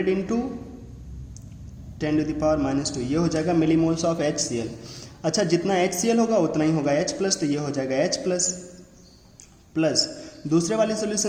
इंटू 10⁻², ये हो जाएगा मिलीमोल्स ऑफ HCl। अच्छा, जितना HCl होगा उतना ही होगा H+, तो ये हो जाएगा H+, प्लस दूसरे वाले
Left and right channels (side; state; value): both; identical; correlation 1.00